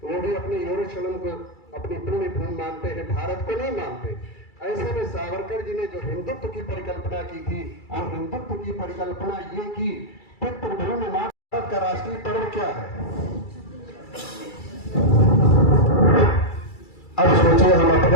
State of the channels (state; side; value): late; right; 2.3 ms